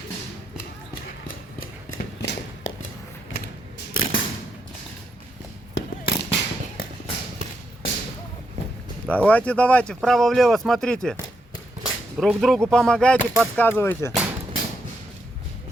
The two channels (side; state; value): both; normal; correlation 0.81